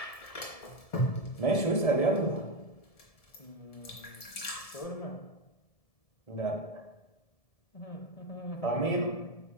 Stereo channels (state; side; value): late; right; 1.7 ms